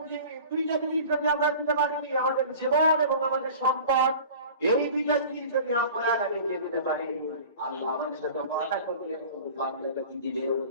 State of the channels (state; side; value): inverted; both; correlation -0.41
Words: দুইটা জিনিস যদি আমরা দিতে পারি, আমাদের জীবন এবং আমাদের সম্পদ, এই দুইটা জিনিস যদি আমরা আল্লাহকে দিতে পারি, আল্লাহ আমাদের সাথে ওয়াদা করলেন বান্দাকে কি দিবেন?